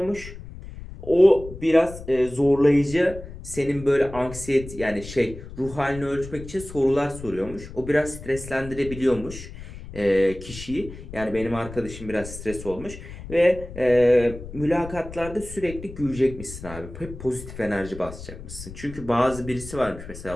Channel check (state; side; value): noise; left; rumble, 13 dB below the sound